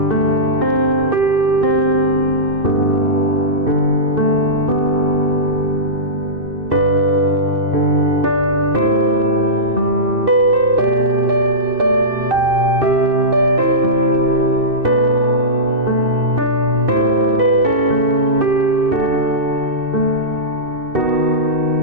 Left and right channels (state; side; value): late; left; 2.6 ms